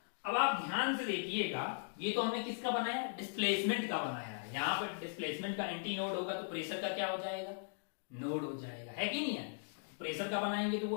अब आप ध्यान से देखिएगा, ये तो हमने किसका बनाया, डिस्प्लेसमेंट का बनाया है। यहाँ पर डिस्प्लेसमेंट का एंटी नोड होगा तो प्रेशर का क्या हो जाएगा, नोड हो जाएगा, है कि नहीं है? प्रेशर का बनाएंगे तो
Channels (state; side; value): silent; right; digital silence